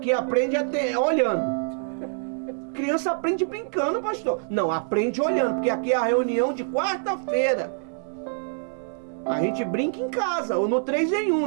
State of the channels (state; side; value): silent; left; digital silence